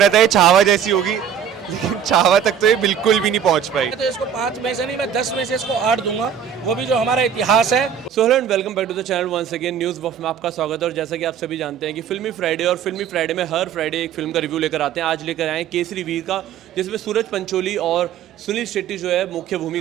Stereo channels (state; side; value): quieter; left; 8.3 dB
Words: था ये छावा जैसी होगी, लेकिन छावा तक तो ये बिल्कुल भी नहीं पहुंच पाई। तो इसको 5 में से नहीं, मैं 10 में से इसको 8 दूंगा, वो भी जो हमारा इतिहास है। So hello and welcome back to the channel once again news buff में आपका स्वागत है। और जैसा कि आप सभी जानते हैं कि फिल्मी फ्राइडे और फिल्मी फ्राइडे में हर फ्राइडे एक फिल्म का रिव्यू लेकर आते हैं। आज लेकर आए हैं केसरी वीर का, जिसमें सूरज पंचोली और सुनील शेट्टी जो है मुख्य